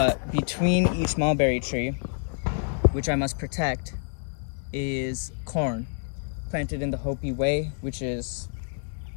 between each mulberry tree, which I must protect, is corn planted in the Hopi way, which is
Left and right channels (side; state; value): right; silent; digital silence